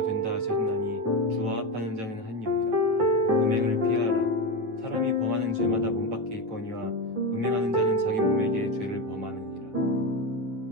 된다 하셨나니 주와 합하는 자는 한 영이라. 음행을 피하라. 사람이 범하는 죄마다 몸 밖에 있거니와 음행하는 자는 자기 몸에게 죄를 범하느니라.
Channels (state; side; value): late; left; 8.9 ms